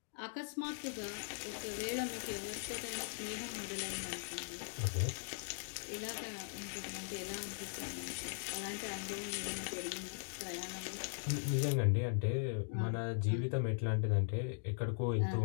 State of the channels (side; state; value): right; silent; digital silence